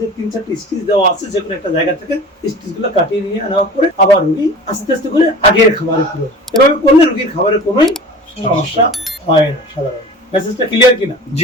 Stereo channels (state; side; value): normal; both; correlation 0.39